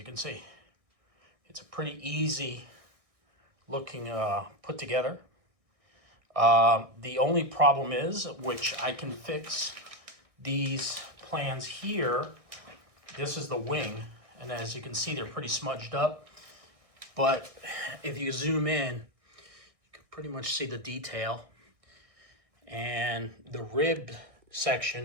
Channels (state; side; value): late; left; 1.6 ms